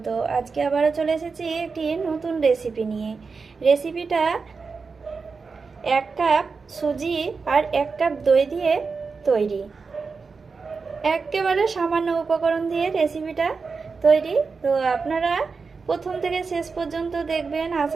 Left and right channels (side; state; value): left; quieter; 4.8 dB